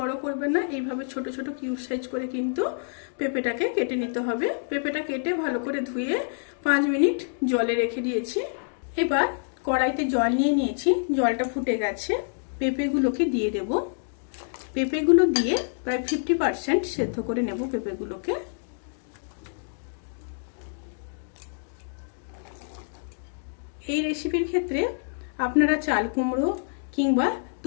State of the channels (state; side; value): silent; right; digital silence